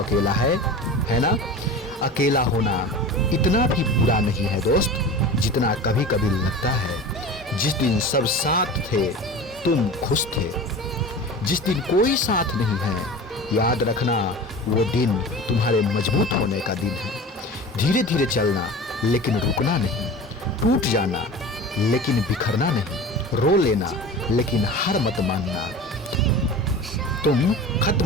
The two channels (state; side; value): normal; both; correlation 0.34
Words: है ना? अकेला होना इतना भी बुरा नहीं है दोस्त, जितना कभी कभी लगता है। जिस दिन सब साथ थे तुम खुश थे, जिस दिन कोई साथ नहीं है, याद रखना वो दिन तुम्हारे मजबूत होने का दिन है। धीरे धीरे चलना लेकिन रुकना नहीं, टूट जाना लेकिन बिखरना नहीं, रो लेना लेकिन हार मत मानना। तुम खत्म